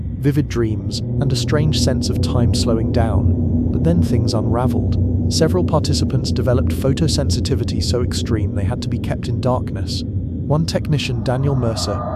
vivid dreams, and a strange sense of time slowing down. But then things unraveled. Several participants developed photosensitivity so extreme they had to be kept in darkness. One technician, Daniel Mercer,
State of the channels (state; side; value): identical; both; correlation 1.00